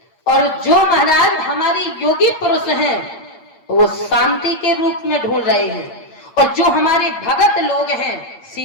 और जो महाराज हमारे योगी पुरुष हैं वो शांति के रूप में ढूंढ रहे हैं, और जो हमारे भगत लोग हैं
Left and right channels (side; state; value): right; late; 8.6 ms